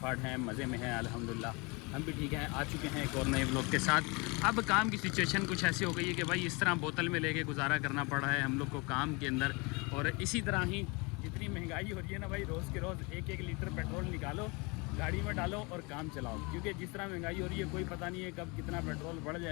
हैं, मज़े में हैं अल्हम्दुलिल्लाह। हम भी ठीक हैं। आ चुके हैं एक और नए व्लॉग के साथ। अब काम की सिचुएशन कुछ ऐसी हो गई है कि भाई इस तरह बोतल में लेके गुजारा करना पड़ रहा है हम लोग को काम के अंदर। और इसी तरह ही जितनी महंगाई हो रही है ना भाई, रोज़ के रोज़ एक एक लीटर पेट्रोल निकालो, गाड़ी में डालो और काम चलाओ। क्योंकि जिस तरह महंगाई हो रही है कोई पता नहीं है कब कितना पेट्रोल बढ़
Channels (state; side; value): quieter; right; 28.2 dB